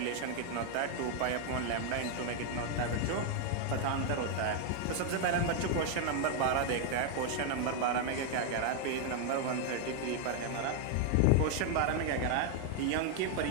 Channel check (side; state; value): both; different; correlation 0.00